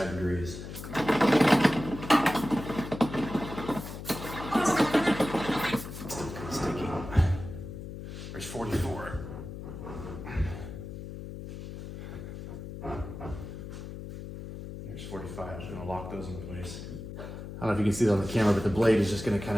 degrees. Still sticky. There's 44. There's 45. I'm just gonna lock those in place. I don't know if you can see that on the camera, but the blade is just gonna kind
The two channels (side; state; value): left; noise; hum, 10 dB below the sound